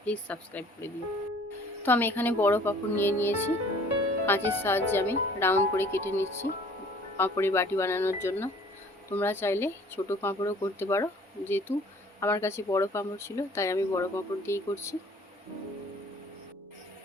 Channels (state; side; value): normal; both; correlation 0.53